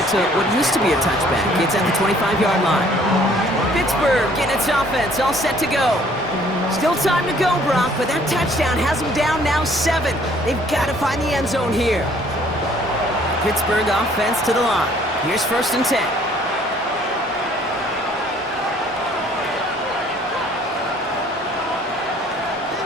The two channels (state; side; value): normal; both; correlation 0.59